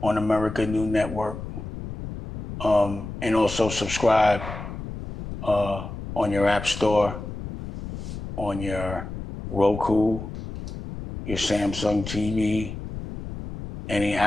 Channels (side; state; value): left; noise; rumble, 9 dB below the sound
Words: America New Network, and also subscribe on your app store, on your Roku, your Samsung TV, any